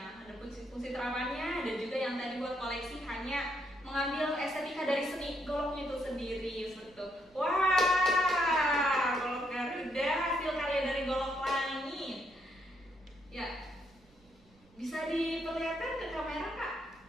Ada fungsi terapannya, ada juga yang tadi buat koleksi hanya mengambil estetika dari seni goloknya itu sendiri seperti itu. Wah, golok Garuda hasil karya dari golok langit. Ya, bisa diperlihatkan ke kamera Kak?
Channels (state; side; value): noise; right; rumble, 30 dB below the sound